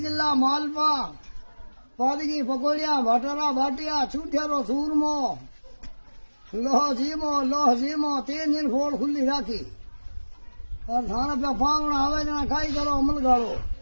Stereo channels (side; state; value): both; inverted; correlation -1.00